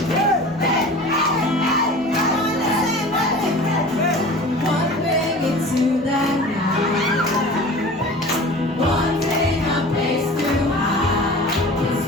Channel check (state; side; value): normal; both; correlation 0.39